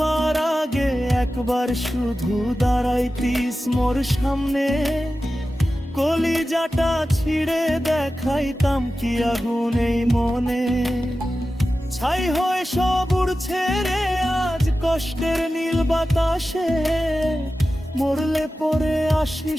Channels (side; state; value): both; normal; correlation 0.94